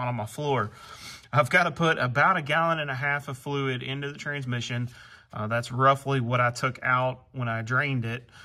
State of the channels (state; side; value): identical; both; correlation 1.00